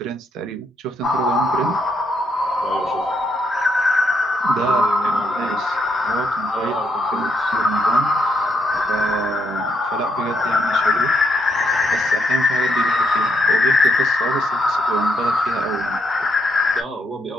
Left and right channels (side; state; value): both; normal; correlation 0.76